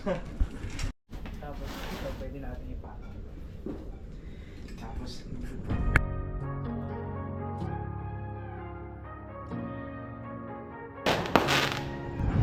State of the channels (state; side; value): identical; both; correlation 1.00